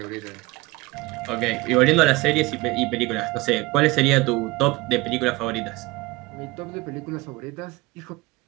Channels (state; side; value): quieter; left; 21.7 dB